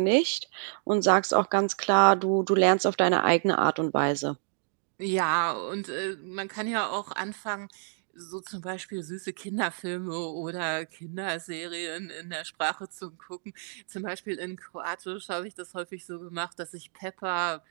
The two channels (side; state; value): left; silent; digital silence